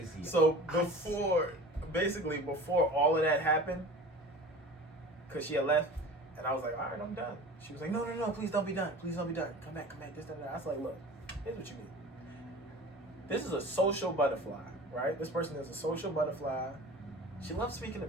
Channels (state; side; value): normal; both; correlation 0.39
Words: Crazy. So before all of that happened, because she had left, and I was like, all right, I'm done. She was like, no, please don't be done. Please don't be done. Come back, this, that. I was like, look, here's what you need. This is a social butterfly, right? This person is a social butterfly. She loves speaking to